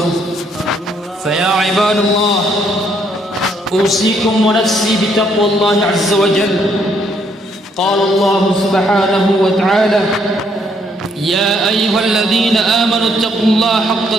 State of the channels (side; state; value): both; normal; correlation 0.70